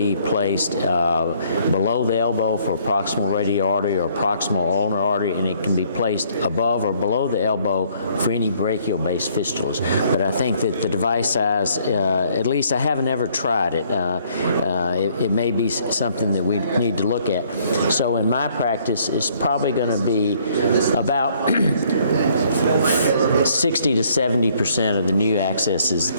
placed below the elbow for proximal radial artery or proximal ulnar artery, and it can be placed above or below the elbow for any brachial-based fistulas. But I think that the device size, at least I haven't ever tried it. It may be something that we need to look at. So in my practice, it's probably going to be about 60 to 70% of the new accesses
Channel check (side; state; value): both; inverted; correlation -0.64